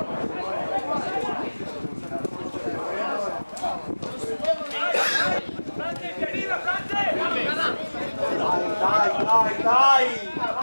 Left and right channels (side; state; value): both; inverted; correlation -1.00